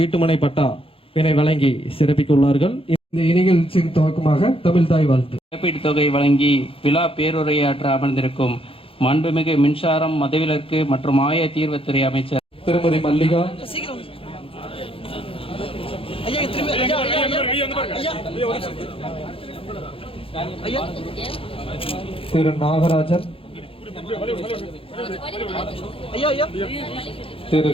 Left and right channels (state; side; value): late; right; 0.27 ms